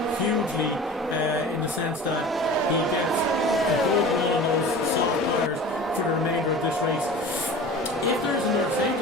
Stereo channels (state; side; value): normal; both; correlation 0.38